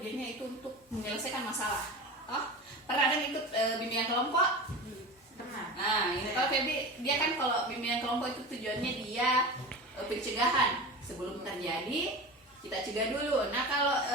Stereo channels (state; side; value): normal; both; correlation 0.30